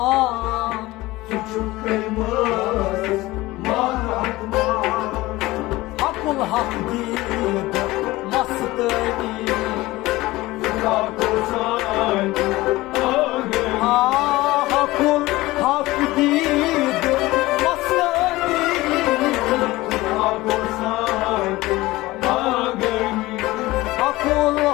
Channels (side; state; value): right; quieter; 19.2 dB